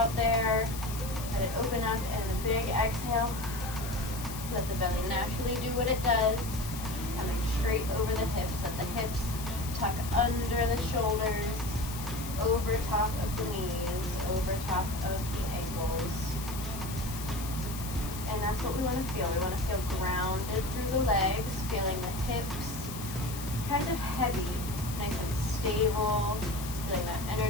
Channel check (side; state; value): left; noise; hiss, 11 dB below the sound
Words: there. Let it open up, and a big exhale. Let the belly naturally do what it does. Coming straight over the hips. Let the hips tuck under the shoulders, over top of the knees, over top of the ankles. And that's what we want to feel. We want to feel grounded through the legs, feeling the hips kind of heavy, nice and stable, feeling that